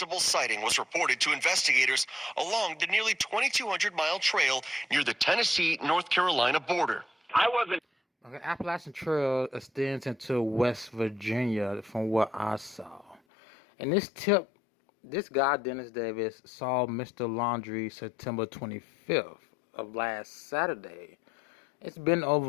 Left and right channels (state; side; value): drops out; right; at 13.2 s